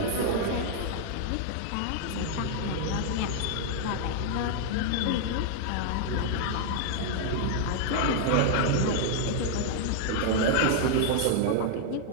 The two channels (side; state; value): both; different; correlation -0.01